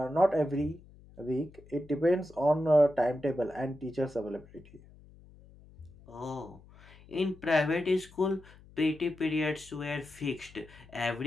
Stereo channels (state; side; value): noise; left; hum, 23 dB below the sound